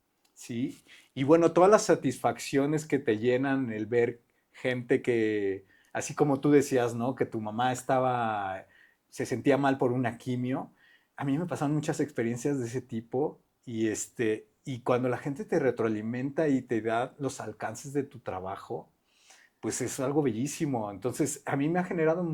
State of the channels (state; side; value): identical; both; correlation 1.00